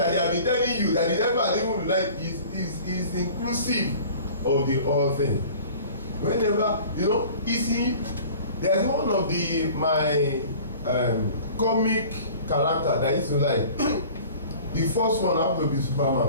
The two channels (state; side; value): inverted; both; correlation -0.45